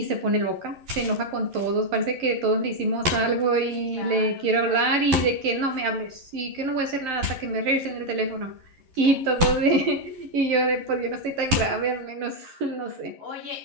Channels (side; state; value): left; late; 11 ms